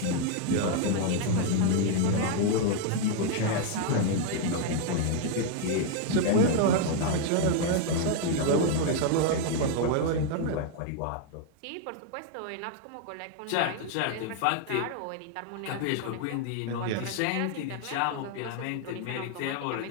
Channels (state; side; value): different; both; correlation 0.01